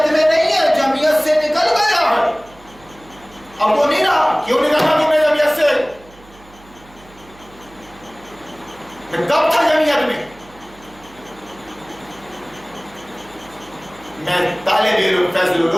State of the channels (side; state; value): right; noise; hum, 24 dB below the sound